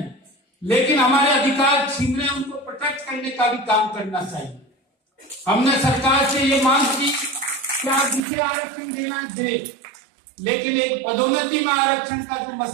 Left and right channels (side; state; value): left; drops out; at 8.2 s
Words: लेकिन हमारे अधिकार छीन रहे उनको प्रोटेक्ट करने का भी काम करना चाहिए। हमने सरकार से ये मांग की कि आप जिसे आरक्षण देना दे, लेकिन एक पदोन्नति में आरक्षण का जो